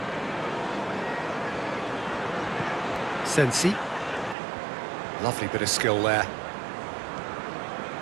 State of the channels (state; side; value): drops out; left; at 4.4 s